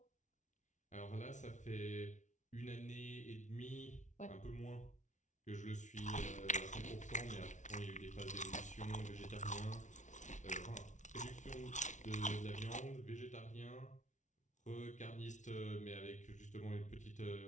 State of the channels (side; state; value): right; late; 0.36 ms